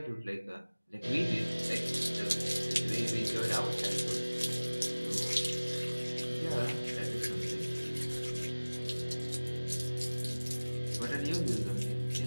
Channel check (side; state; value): both; inverted; correlation -1.00